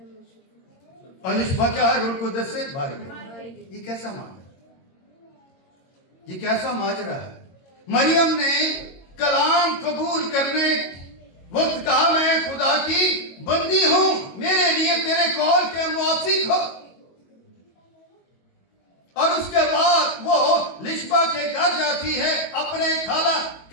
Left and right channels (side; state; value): right; late; 22 ms